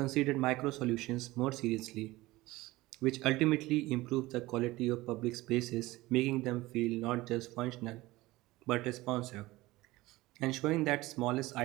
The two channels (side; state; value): left; quieter; 19.2 dB